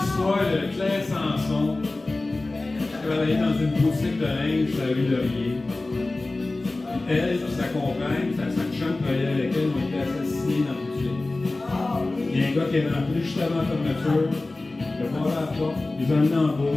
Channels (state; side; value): quieter; right; 3.1 dB